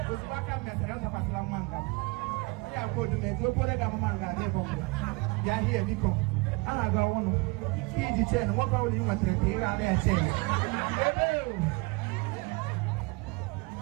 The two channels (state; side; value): quieter; left; 26.7 dB